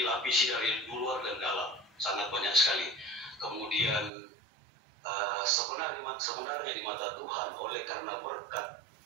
dari luar dan dalam, sangat banyak sekali. Kemudian sebenarnya di mata Tuhan, oleh karena berkat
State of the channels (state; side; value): drops out; left; at 4.1 s